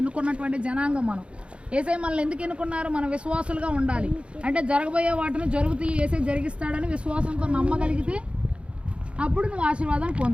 ఎన్నుకున్నటువంటి జనాంగం. మనం ఏసే మనల్ని ఎందుకు ఎన్నుకున్నారు? మనం విశ్వాసులుగా ఉండాలి. అంటే జరగబోయే వాటిని జరుగుతూ ఏసే జరిగిస్తాడని విశ్వాసంతో నమ్మగలిగితే అప్పుడు నువ్వు ఆశీర్వాదాన్ని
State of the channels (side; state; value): left; late; 0.059 ms